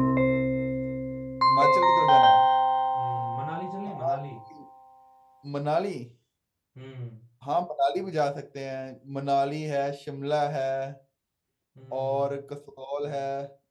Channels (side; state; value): both; identical; correlation 1.00